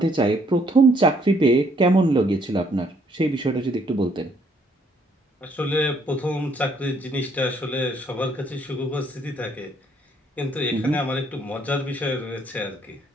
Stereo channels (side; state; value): both; normal; correlation 0.67